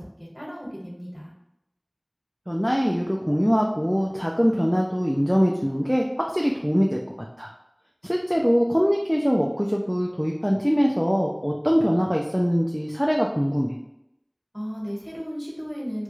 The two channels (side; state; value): both; identical; correlation 1.00